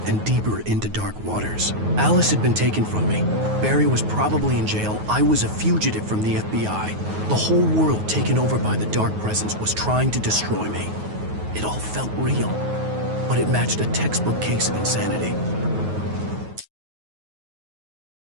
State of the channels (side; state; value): left; late; 9.4 ms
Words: and deeper into dark waters. Alice had been taken from me. Barry was probably in jail. I was a fugitive from the FBI. The whole world taken over by the Dark Presence was trying to destroy me. It all felt real, but it matched a textbook case of insanity.